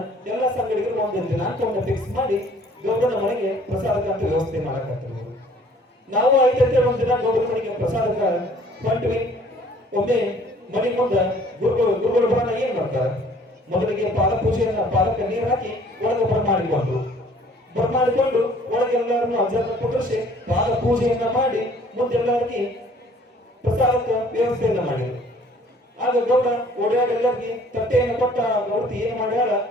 ಎಲ್ಲ ಸಂಘಟಕರು ಒಂದು ದಿನಾಂಕವನ್ನು ಫಿಕ್ಸ್ ಮಾಡಿ ಗೌಡನ ಮನೆಗೆ ಪ್ರಸಾದಕ್ಕಂತ ವ್ಯವಸ್ಥೆ ಮಾಡಕತ್ತಾರೆ. ನಾವು ಐದೈತೆ ಒಂದ್ ದಿನ ಗೌಡನ ಮನೆಗೆ ಪ್ರಸಾದಕ್ಕ ಹೊಂಟ್ವಿ. ಒಮ್ಮೆ ಮನೆ ಮುಂದ ಗುರುಗಳು ಬರೋಣ ಏನ್ ಮಾಡ್ತಾರೆ, ಮೊದಲಿಗೆ ಪಾದ ಪೂಜೆಯನ್ನ ಪಾದಕ್ಕೆ ನೀರು ಹಾಕಿ ಒಳಗೆ ಬರಮಾಡಿಕೊಂಡು ಒಳಗೆಲ್ಲರನ್ನು ಅಜ್ಜರನ್ನ ಕುಂಡ್ರಿಸಿ ಪಾದ ಪೂಜೆಯನ್ನ ಮಾಡಿ ಮುಂದೆಲ್ಲರಿಗೆ ಪ್ರಸಾದಕ್ಕೆ ವ್ಯವಸ್ಥೆಯನ್ನ ಮಾಡಿದ್ರು. ಆಗ ಗೌಡ ಓಡಾಡಿ ಎಲ್ಲರಿಗೆ ತಟ್ಟೆಯನ್ನು ಕೊಟ್ಟ ಗೌಡತಿ ಏನ್ ಮಾಡ್ಯಾಳ,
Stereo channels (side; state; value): both; normal; correlation 0.55